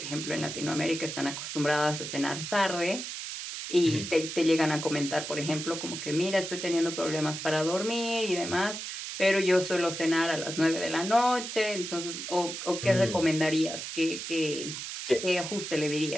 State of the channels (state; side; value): noise; right; hiss, 7 dB below the sound